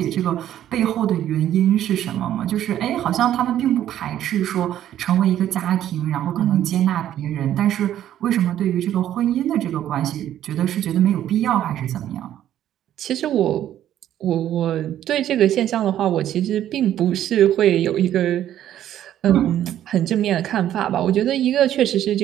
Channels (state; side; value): quieter; left; 11.6 dB